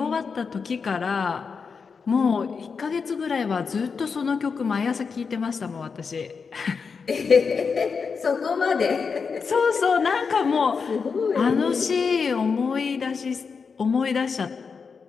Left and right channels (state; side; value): quieter; right; 5.4 dB